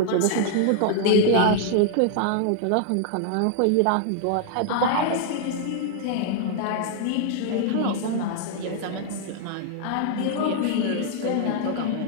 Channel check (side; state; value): both; different; correlation -0.01